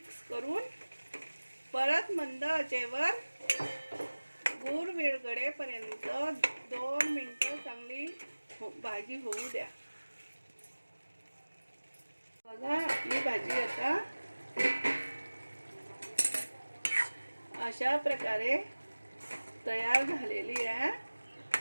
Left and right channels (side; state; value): both; inverted; correlation -1.00